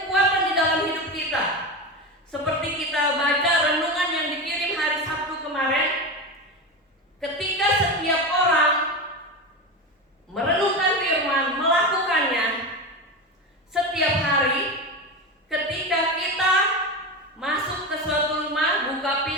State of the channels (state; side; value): normal; both; correlation 0.21